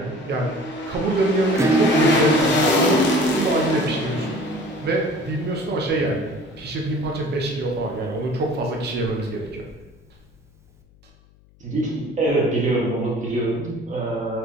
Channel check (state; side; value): noise; left; hum, 29 dB below the sound